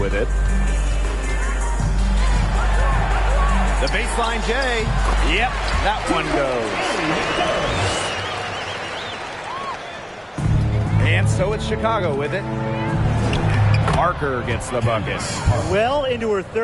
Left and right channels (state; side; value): identical; both; correlation 1.00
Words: it. The baseline J. Yep, that one goes. And so it's Chicago with it. Parker gets the bucket. Well into her